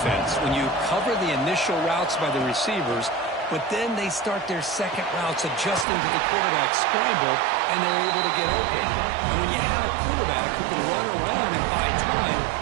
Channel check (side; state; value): left; drops out; at 5.9 s